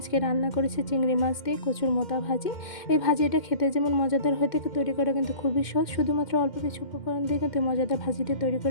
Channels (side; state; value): right; late; 2.1 ms